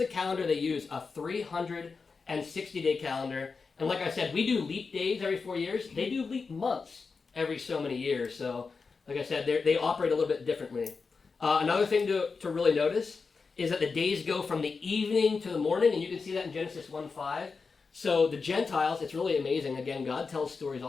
calendar they use, a 360-day calendar. And like I said, we do leap days every 4 years. They do leap months every so many years. So, like I said, they operate a little bit differently. Another thing to really notice is that the days go from the evening to the morning, and you can see that in Genesis 1:5. So the Gentiles, it's really amazing. Again, God tells stories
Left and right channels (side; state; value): right; quieter; 4.8 dB